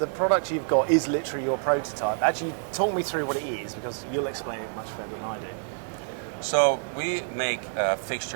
product you've got is literally your prototype. Actually, talk me through what it is, because you'll explain it much better than I do. So we make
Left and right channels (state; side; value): silent; left; 60 dB below the other